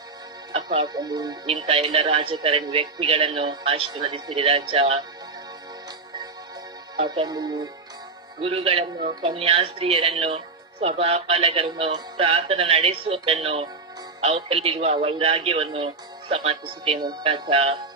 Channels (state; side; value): quieter; left; 4.0 dB